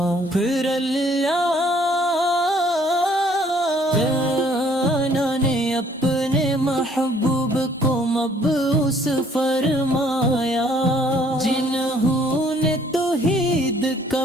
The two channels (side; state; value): both; normal; correlation 0.61